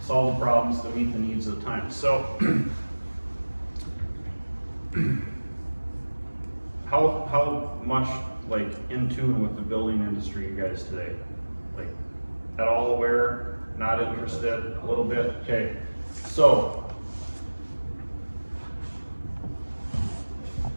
solve the problems to meet the needs of the time. So, how much like in tune with the building industry you guys today? Like at all aware, not interested, a little bit? Okay, so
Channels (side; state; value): both; inverted; correlation -1.00